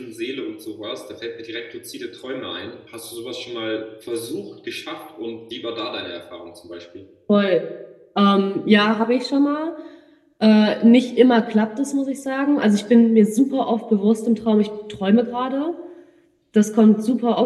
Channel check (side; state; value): both; identical; correlation 1.00